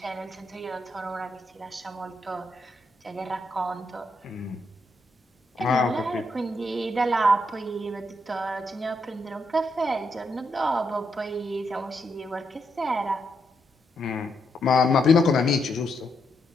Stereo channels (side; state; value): both; normal; correlation 0.80